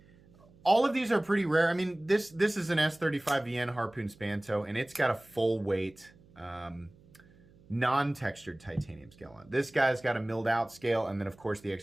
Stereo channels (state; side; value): noise; right; hum, 27 dB below the sound